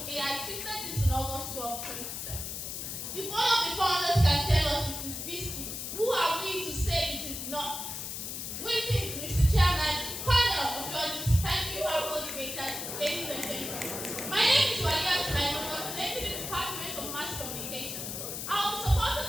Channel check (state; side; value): noise; left; hiss, 6 dB below the sound